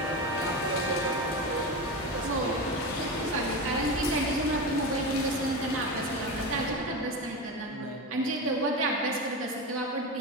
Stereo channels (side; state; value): both; normal; correlation 0.21